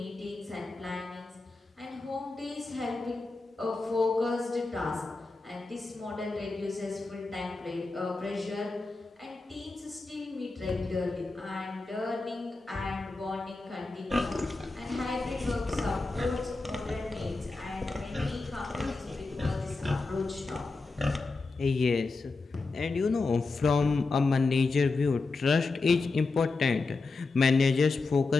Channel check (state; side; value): quieter; right; 3.7 dB